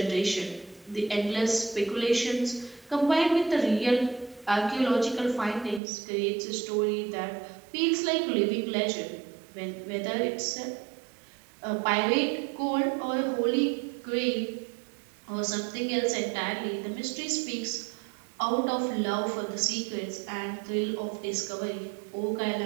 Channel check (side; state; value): left; drops out; at 5.8 s